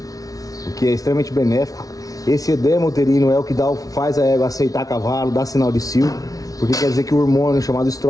o que é extremamente benéfico. Esse edema uterino é o que faz a égua aceitar cavalo, dá sinal de cio, porque quer dizer que o hormônio chamado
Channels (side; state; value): right; late; 0.18 ms